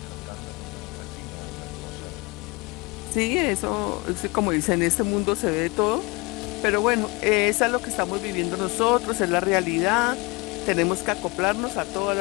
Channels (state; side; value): quieter; right; 26.5 dB